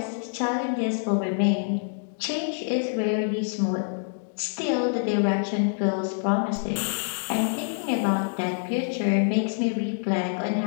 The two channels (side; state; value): right; silent; digital silence